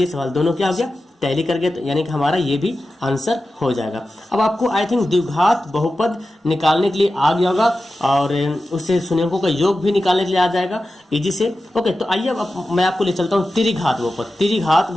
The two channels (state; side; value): normal; both; correlation 0.93